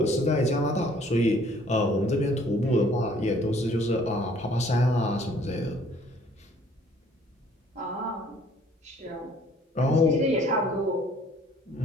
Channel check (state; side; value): normal; both; correlation 0.58